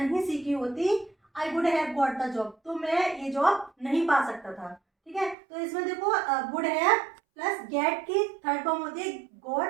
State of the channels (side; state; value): left; drops out; at 5.4 s